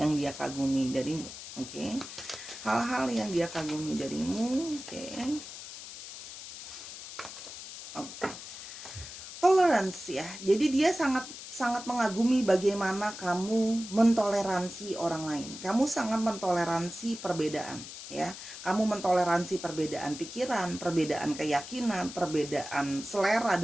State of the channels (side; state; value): left; noise; hiss, 12 dB below the sound